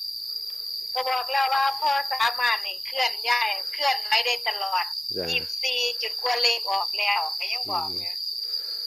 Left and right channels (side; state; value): both; normal; correlation 0.97